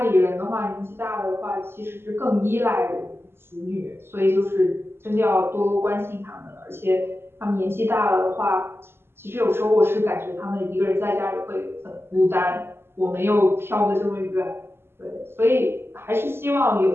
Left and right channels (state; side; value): late; left; 0.12 ms